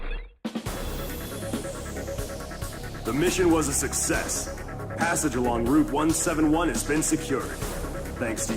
The mission was a success. Passage along Route 171 has been secured. Thanks to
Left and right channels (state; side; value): identical; both; correlation 1.00